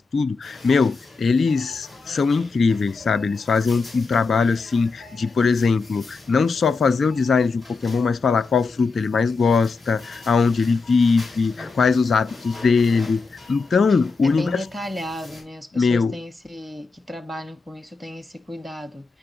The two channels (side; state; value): right; quieter; 4.4 dB